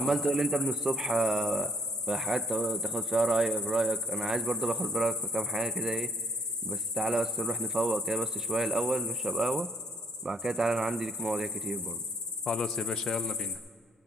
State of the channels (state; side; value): normal; both; correlation 0.62